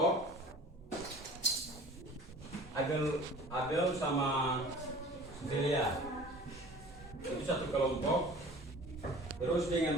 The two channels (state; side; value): normal; both; correlation 0.44